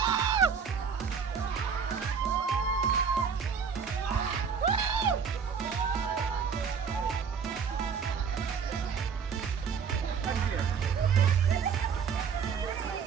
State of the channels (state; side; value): quieter; left; 6.4 dB